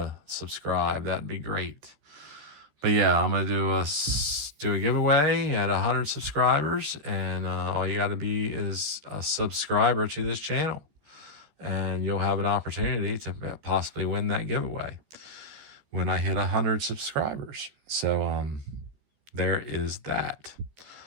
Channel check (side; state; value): left; late; 14 ms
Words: subscribe. That'd be great. But yeah, I'm going to do a giveaway at 100 subscribers. And all you got to be is a subscriber to this channel. And you'll have an opportunity to possibly win that giveaway when I hit 100 subscribers. So there is that.